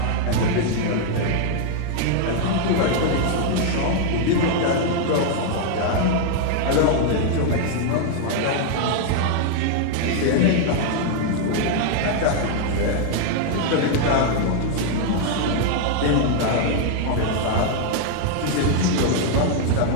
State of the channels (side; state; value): both; different; correlation 0.00